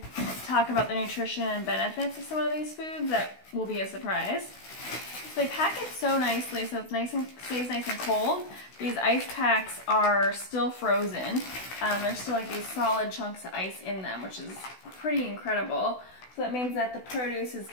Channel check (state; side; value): late; right; 16 ms